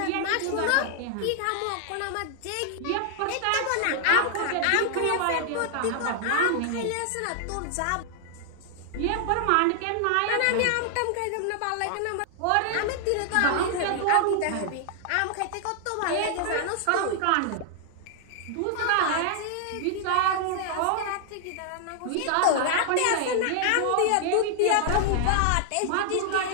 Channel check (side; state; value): both; different; correlation -0.01